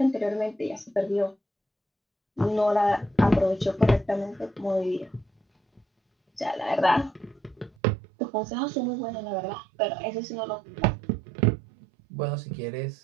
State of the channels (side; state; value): left; drops out; at 7.7 s